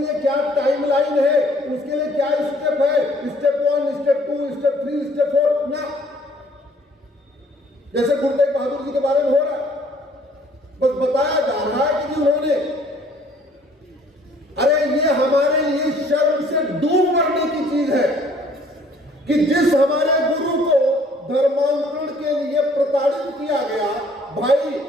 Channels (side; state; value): both; normal; correlation 0.59